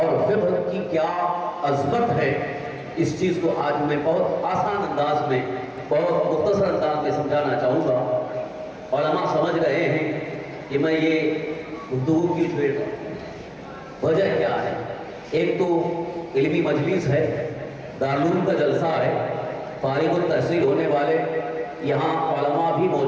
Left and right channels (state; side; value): identical; both; correlation 1.00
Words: فقہ کی کیا عظمت ہے، اس چیز کو آج میں بہت آسان انداز میں، بہت مختصر انداز میں سمجھانا چاہوں گا۔ علماء سمجھ رہے ہیں کہ میں یہ گفتگو کیوں چھیڑ رہا ہوں، وجہ کیا ہے۔ ایک تو علمی مجلس ہے، دارالعلوم کا جلسہ ہے، فارغ التحصیل ہونے والے یہاں علماء بھی